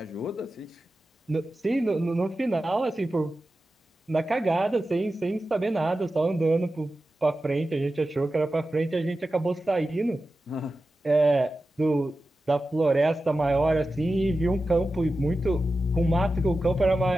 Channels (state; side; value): normal; both; correlation 0.93